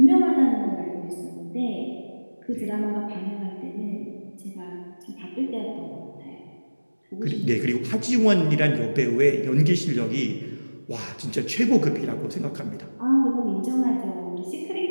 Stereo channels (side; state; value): both; inverted; correlation -1.00